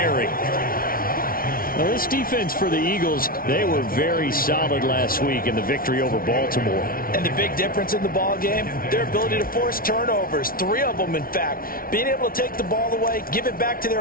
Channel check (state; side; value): late; right; 0.43 ms